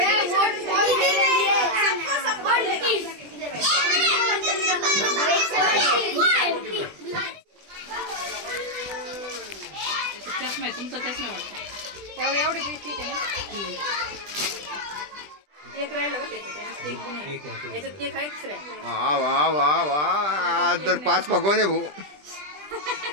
चष्मा आहे तुमचा, चष्मा वाटतं एवढी ठीक आहे ना? केक राहिलं बरं त्याच्यात केक पण आहे याच्यात केक आहे दुसरा आहे. वा वा वा वा तर 5 पकवाने भाऊ.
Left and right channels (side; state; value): left; late; 20 ms